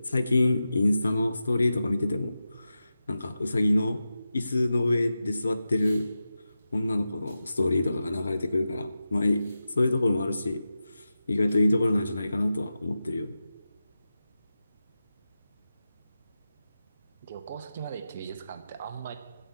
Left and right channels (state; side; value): inverted; both; correlation -0.92